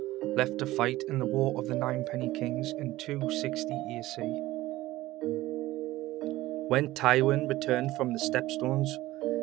left to fight in the War of the Ninepenny Kings in 260 AC. When Tywin returned from the Stepstones,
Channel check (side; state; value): left; quieter; 17.1 dB